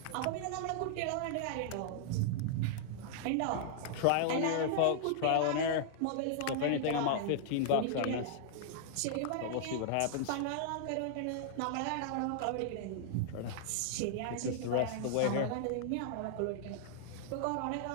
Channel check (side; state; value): both; different; correlation -0.01